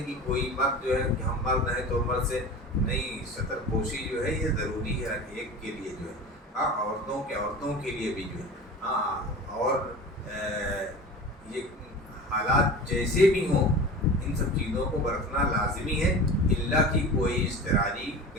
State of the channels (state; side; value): normal; both; correlation 0.35